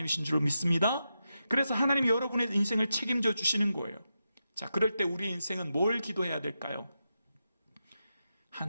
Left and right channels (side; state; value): both; inverted; correlation -0.88